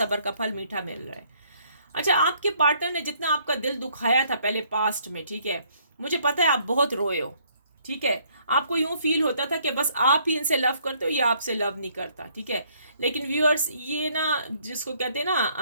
का फल मीठा मिल रहा है। अच्छा, आपके पार्टनर ने जितना आपका दिल दुखाया था पहले पास्ट में, ठीक है, मुझे पता है आप बहुत रोए हो, ठीक है। आपको यूं फील होता था कि बस आप ही इनसे लव करते हो, ये आपसे लव नहीं करता, ठीक है। लेकिन व्यूअर्स, ये ना जिसको कहते हैं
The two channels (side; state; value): both; inverted; correlation -0.65